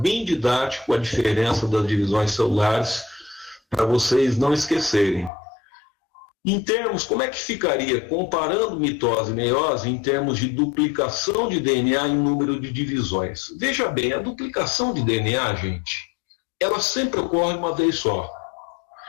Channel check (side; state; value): right; drops out; at 5.3 s